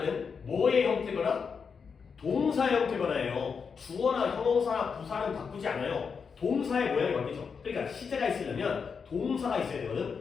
뭐의 형태거나 동사 형태거나예요. 주어나 형용사나 부사는 바꾸지 않아요. 동사의 모양이 바뀌죠. 그러니까 시제가 있으려면 동사가 있어야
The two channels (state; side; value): quieter; right; 5.9 dB